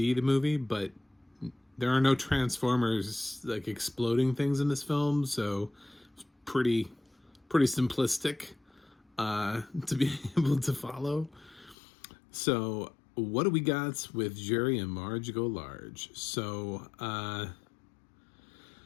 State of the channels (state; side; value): drops out; right; at 11.8 s